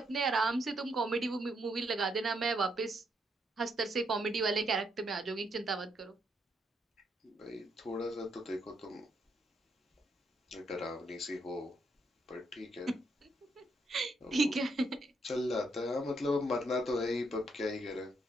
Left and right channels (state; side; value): normal; both; correlation 0.76